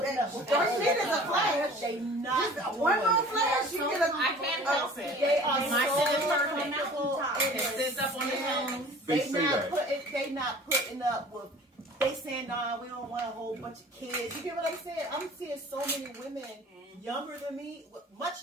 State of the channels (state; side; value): normal; both; correlation 0.45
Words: shit is a flash. They not Just one more flash, you get a. I can't help it. They are My shit is so perfect. comfortable in It sits up on the their phone. They They say not that. putting up with. They saying, nah, we don't want a whole bunch of kids. You get what I'm saying? I'm seeing so many women younger than me, much